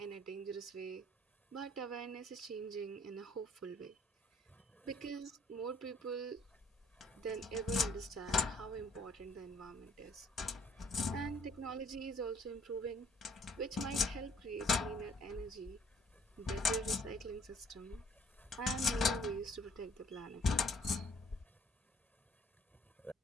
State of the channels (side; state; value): both; normal; correlation 0.61